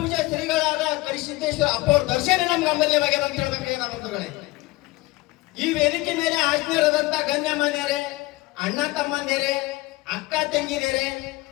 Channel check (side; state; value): right; quieter; 20.6 dB